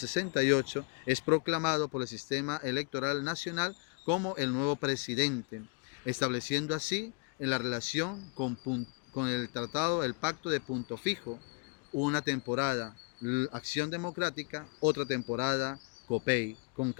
es proclamado por el sistema electoral nacional como el nuevo presidente, estableciendo así en la relación con el tratado, el pacto de Punto Fijo, una temporada Acción Democrática, otra temporada COPEI. Con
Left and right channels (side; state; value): right; quieter; 30.7 dB